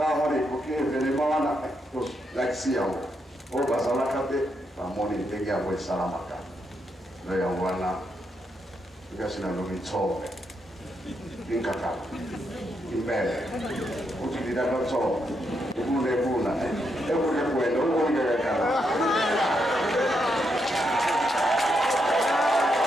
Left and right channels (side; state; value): both; normal; correlation 0.80